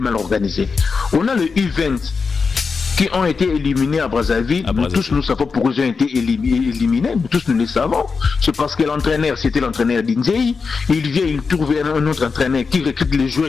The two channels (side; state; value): right; quieter; 5.0 dB